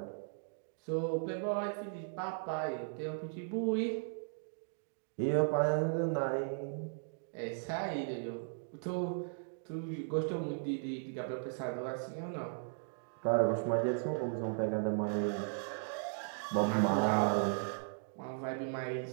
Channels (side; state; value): left; silent; digital silence